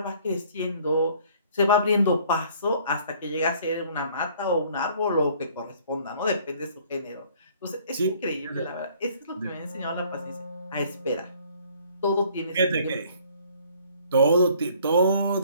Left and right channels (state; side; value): inverted; both; correlation -0.58